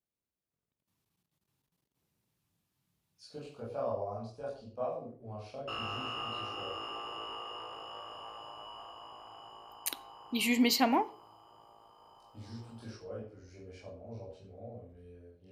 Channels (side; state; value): both; identical; correlation 1.00